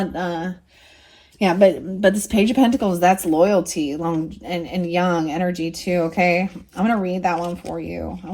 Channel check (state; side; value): identical; both; correlation 1.00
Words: but this Page of Pentacles, that's loyalty, long and young energy too, okay? I'm going to read that one for you. I